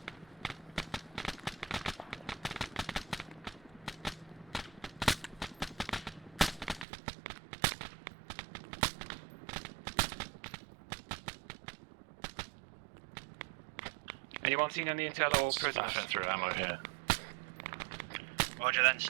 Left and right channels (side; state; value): left; drops out; at 6.9 s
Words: Anyone seen any intel or prisoners? Spaffing through ammo here. Roger, then